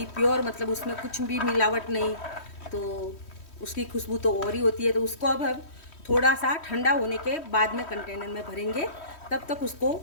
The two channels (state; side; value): late; right; 3.1 ms